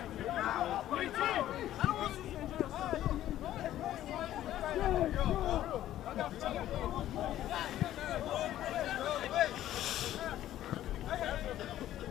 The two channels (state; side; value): quieter; right; 12.9 dB